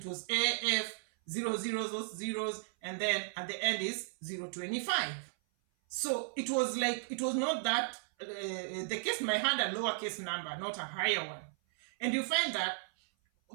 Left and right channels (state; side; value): silent; left; 54 dB below the other